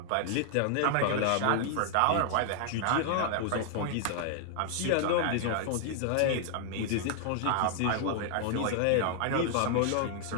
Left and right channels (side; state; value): both; different; correlation 0.00